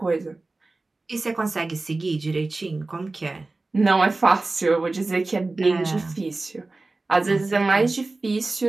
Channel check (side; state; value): left; quieter; 3.3 dB